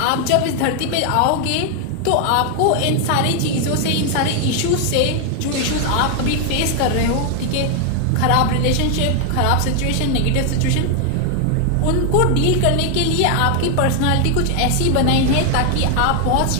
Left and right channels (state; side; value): different; both; correlation 0.00